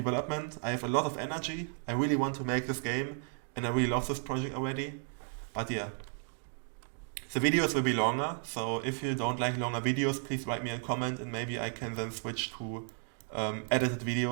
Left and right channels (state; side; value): silent; left; 55 dB below the other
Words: I have a lot of energy. I really want to make this game, and I really love this project already. But yeah, the videos will be longer, so if you don't like longer videos, please write me a comment, and maybe I can then switch to edited